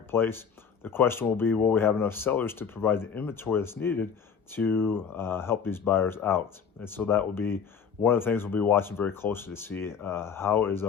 The question will be, will we have enough sellers to provide the inventory that's needed to help these buyers out? And so that will be one of the things we'll be watching very closely to see how is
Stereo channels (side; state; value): right; quieter; 6.8 dB